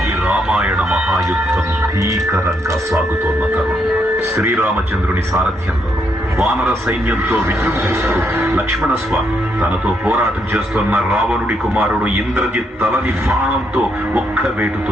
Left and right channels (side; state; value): both; normal; correlation 0.76